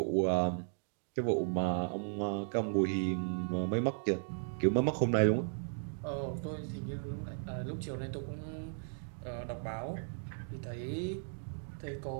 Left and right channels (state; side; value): silent; left; digital silence